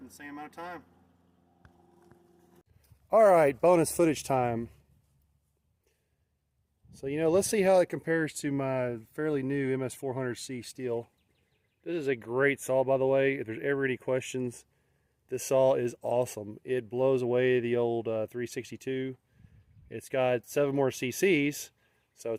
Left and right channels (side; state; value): both; identical; correlation 1.00